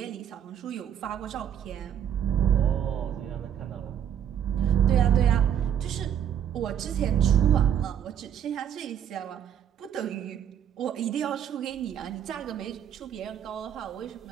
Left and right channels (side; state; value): left; quieter; 9.3 dB